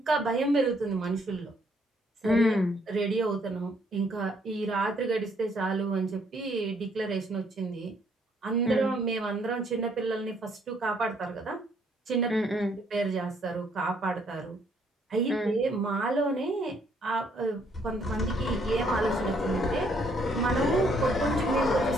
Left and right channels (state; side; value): normal; both; correlation 0.68